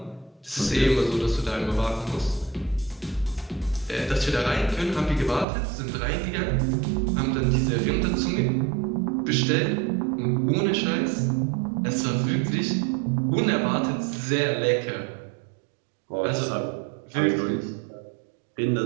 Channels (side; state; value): left; drops out; at 5.5 s